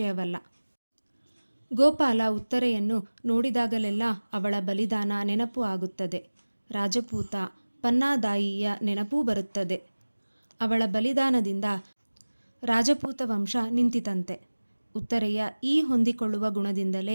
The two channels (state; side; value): inverted; both; correlation -1.00